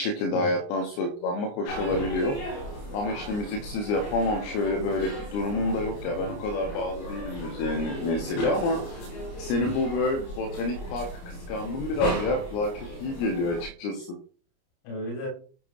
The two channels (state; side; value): late; right; 29 ms